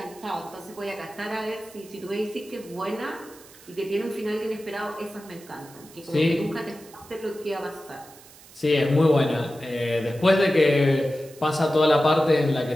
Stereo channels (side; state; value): right; noise; hiss, 22 dB below the sound